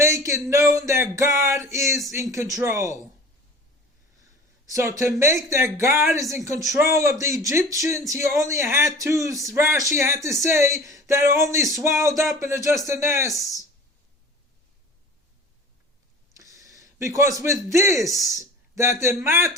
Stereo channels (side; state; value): both; normal; correlation 0.41